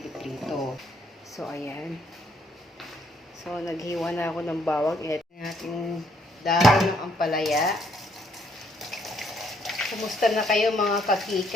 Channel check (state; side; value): normal; both; correlation 0.69